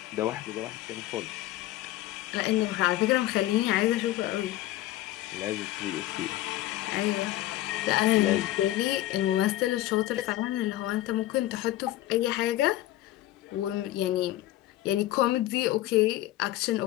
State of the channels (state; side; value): quieter; right; 15.2 dB